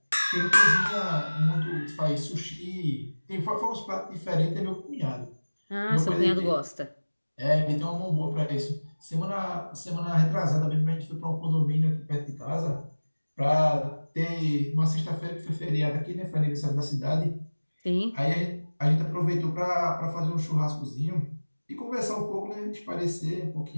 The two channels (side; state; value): both; inverted; correlation -1.00